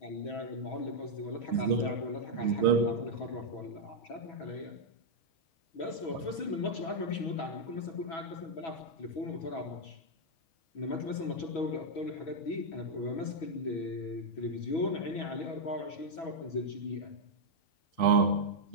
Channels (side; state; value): right; late; 6.1 ms